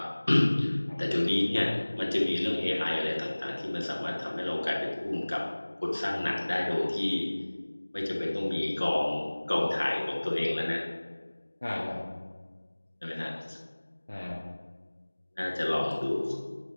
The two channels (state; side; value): inverted; both; correlation -1.00